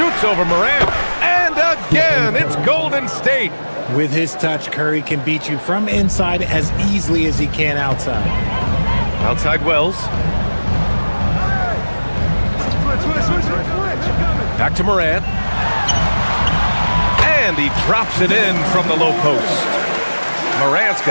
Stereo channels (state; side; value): inverted; both; correlation -1.00